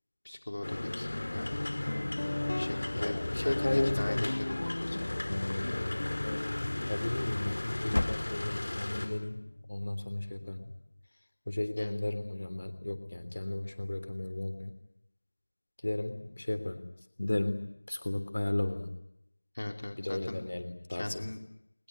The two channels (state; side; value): inverted; both; correlation -1.00